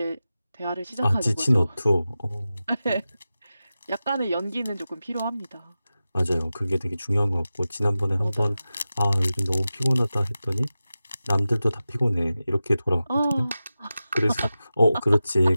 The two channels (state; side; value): inverted; both; correlation -0.94